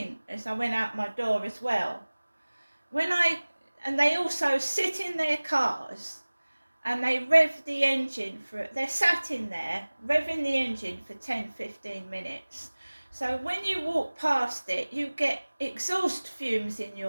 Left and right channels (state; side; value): inverted; both; correlation -1.00